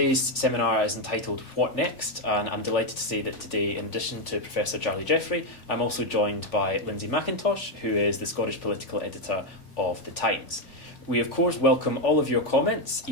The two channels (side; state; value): right; late; 3.4 ms